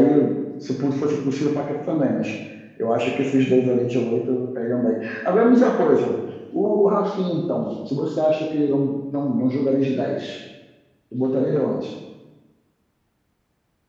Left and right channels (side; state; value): both; identical; correlation 1.00